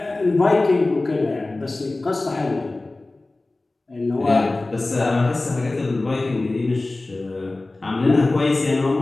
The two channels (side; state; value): right; quieter; 3.0 dB